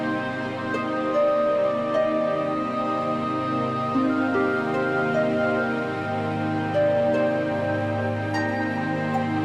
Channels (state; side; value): identical; both; correlation 1.00